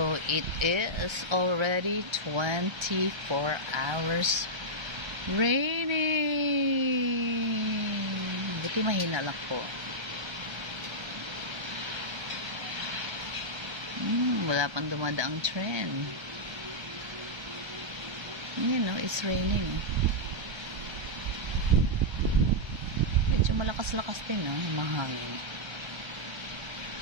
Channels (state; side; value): late; left; 1.3 ms